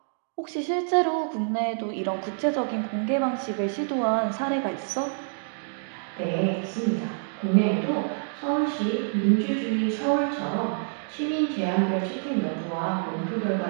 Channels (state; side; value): silent; left; digital silence